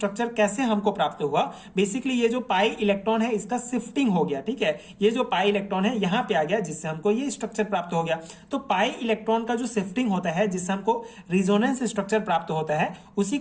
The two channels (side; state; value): both; identical; correlation 1.00